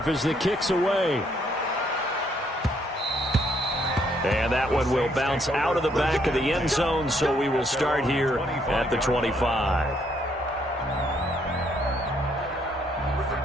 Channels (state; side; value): normal; both; correlation 0.70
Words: as the kick's away. And that one will bounce out of the back of the end zone, so we will start here at the 25.